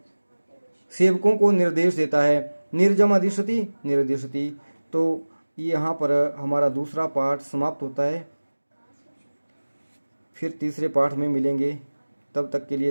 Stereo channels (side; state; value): both; inverted; correlation -1.00